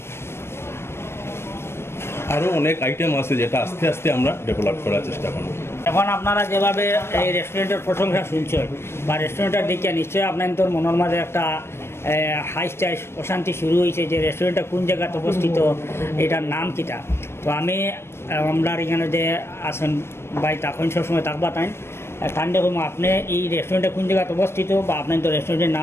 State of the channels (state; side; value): late; right; 0.12 ms